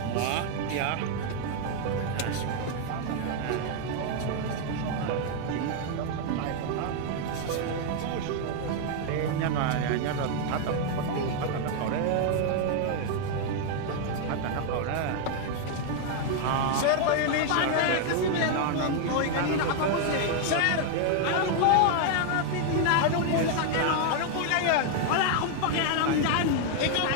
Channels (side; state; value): both; different; correlation 0.00